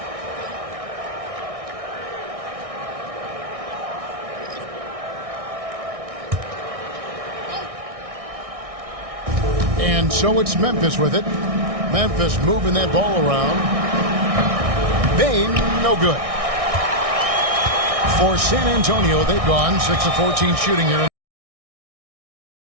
And so it's Memphis with it. Memphis moving that ball around. Bane, no good. For San Antonio, they've gone 6 of 14 shooting here.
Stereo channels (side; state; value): left; late; 1.6 ms